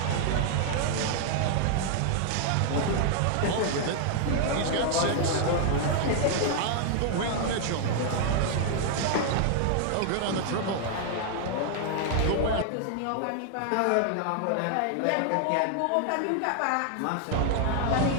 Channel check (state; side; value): different; both; correlation 0.00